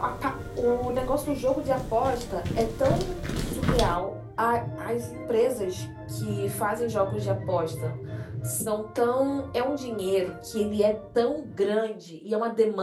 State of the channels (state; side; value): identical; both; correlation 1.00